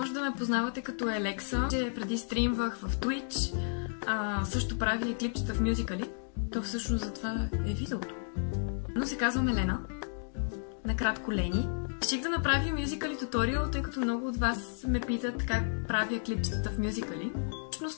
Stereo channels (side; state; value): right; silent; digital silence